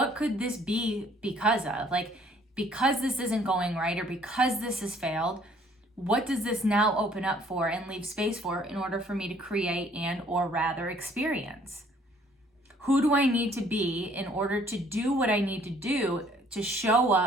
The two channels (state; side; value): normal; both; correlation 0.60